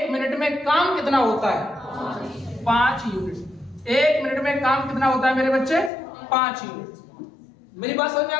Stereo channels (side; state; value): right; drops out; at 5.9 s